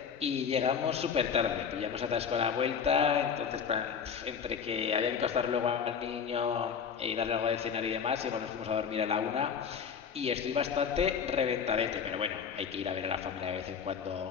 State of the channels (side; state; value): right; quieter; 6.9 dB